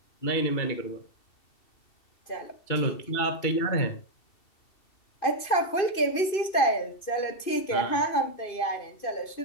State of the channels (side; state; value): right; late; 2.5 ms